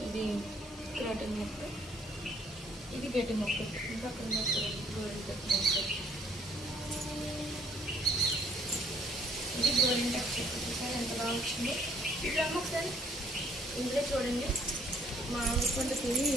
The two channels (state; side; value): normal; both; correlation 0.63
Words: ఇది క్రాటన్ మొక్క, ఇది గడ్డి మొక్క. ఇంకా అక్కడ గోరింటాకు మొక్క, ఇది గోరింటాకు చెట్టు చూసారు ఎంత బాగా వచ్చింది. ఇప్పుడు ఒకసారి ఇందులో చూడండి, మామిడి పండు తిని